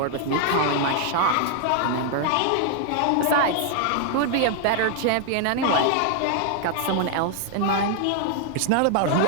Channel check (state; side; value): different; both; correlation 0.00